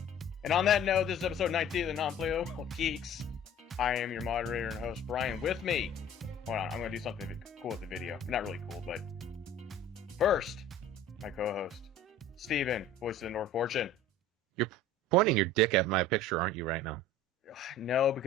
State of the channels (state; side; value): normal; both; correlation 0.45